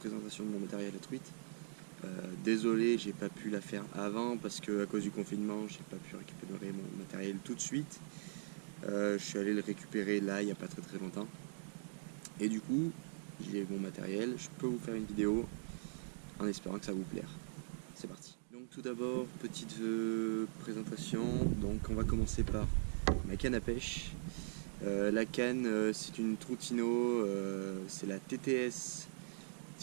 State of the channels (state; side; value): silent; left; digital silence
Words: de mon matériel à truite. Désolé, j'ai pas pu la faire avant parce que à cause du confinement, j'ai pas pu récupérer mon matériel tout de suite. Je suis allé le récupérer là, il n'y a pas très longtemps. Et du coup, j'ai mon matériel, je peux vous faire une vidéo en espérant que ça vous plaire. C'est parti. Donc tout d'abord, petite présentation. Donc on va commencer par ma canne à pêche. La canne, c'est une Troutino, c'est la